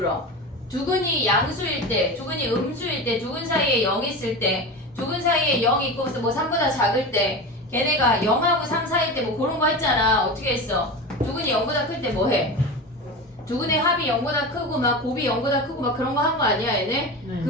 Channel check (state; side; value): normal; both; correlation 0.27